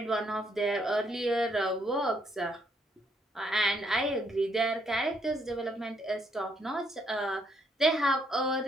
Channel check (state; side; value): normal; both; correlation 0.72